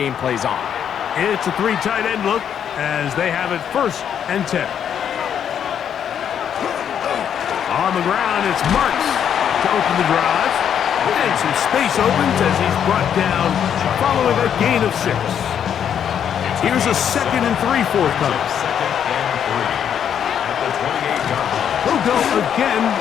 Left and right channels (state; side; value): quieter; right; 8.7 dB